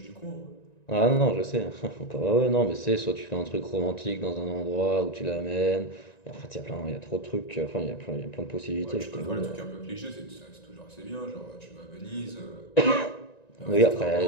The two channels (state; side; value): late; right; 1.9 ms